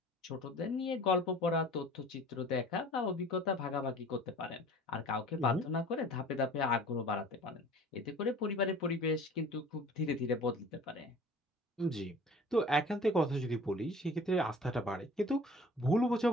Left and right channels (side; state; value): both; normal; correlation 0.46